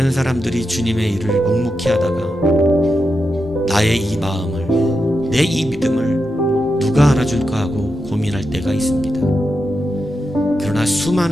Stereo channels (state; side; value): normal; both; correlation 0.87